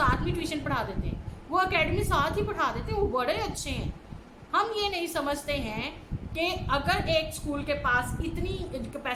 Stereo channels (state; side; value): identical; both; correlation 1.00